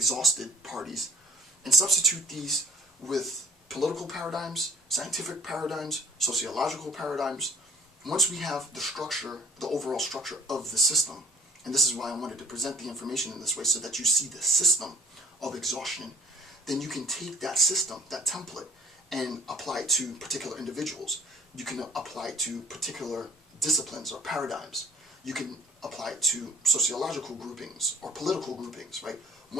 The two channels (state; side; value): normal; both; correlation 0.54